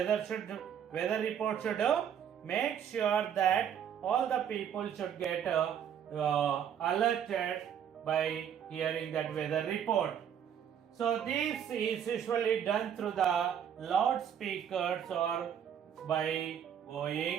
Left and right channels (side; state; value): left; quieter; 8.8 dB